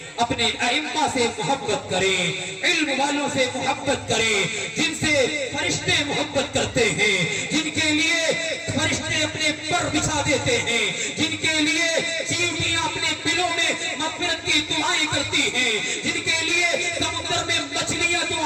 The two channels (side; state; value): both; identical; correlation 1.00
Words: اپنے ائمہ سے محبت کریں، علم والوں سے محبت کریں، جن سے فرشتے محبت کرتے ہیں، جن کے لیے فرشتے اپنے پر بچھا دیتے ہیں، جن کے لیے چیونٹیاں اپنے بلوں میں مغفرت کی دعائیں کرتی ہیں، جن کے لیے سمندر میں مچھلیاں